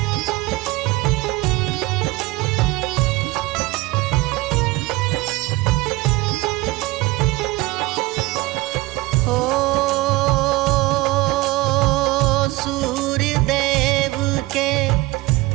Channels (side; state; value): left; quieter; 20.2 dB